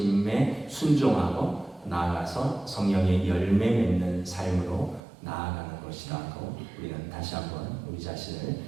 순종하고 나아가서 성령의 열매 맺는 삶으로 나아가는 것이라고 우리는 다시 한번 우리 자신을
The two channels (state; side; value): drops out; left; at 5.0 s